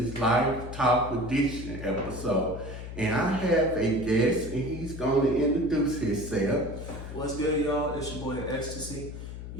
Life Talk Edition episode. And I have a guest, and he's going to introduce himself. What's good, y'all? It's your boy Exstacy.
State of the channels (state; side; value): noise; left; hum, 9 dB below the sound